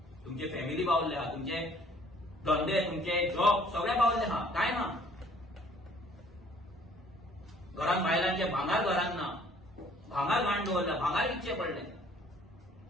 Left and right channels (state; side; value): normal; both; correlation 0.58